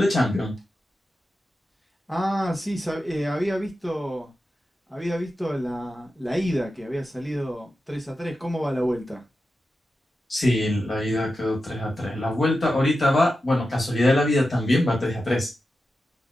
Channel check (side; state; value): both; normal; correlation 0.91